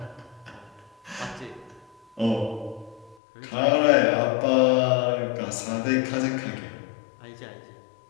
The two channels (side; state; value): right; drops out; at 3.2 s